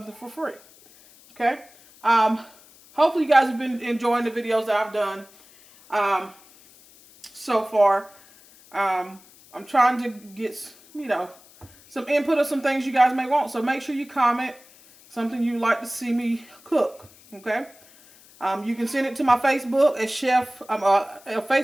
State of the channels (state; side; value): noise; left; hiss, 25 dB below the sound